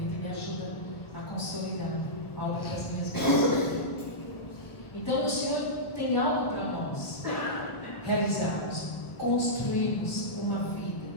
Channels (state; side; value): late; right; 1.1 ms